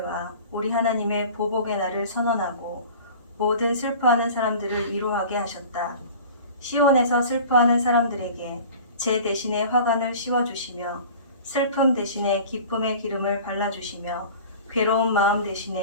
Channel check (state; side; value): inverted; both; correlation -0.41